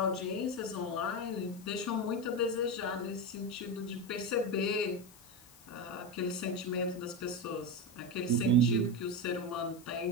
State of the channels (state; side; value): noise; left; hiss, 23 dB below the sound